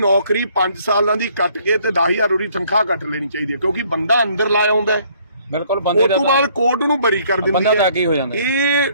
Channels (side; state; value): both; inverted; correlation -0.63